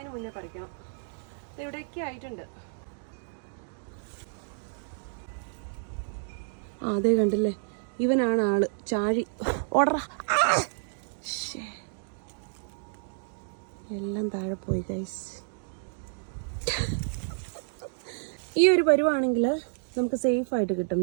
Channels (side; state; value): left; silent; digital silence